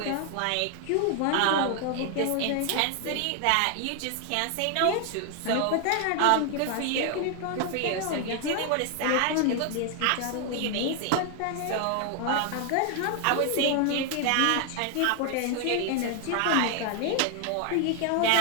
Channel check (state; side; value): different; both; correlation 0.00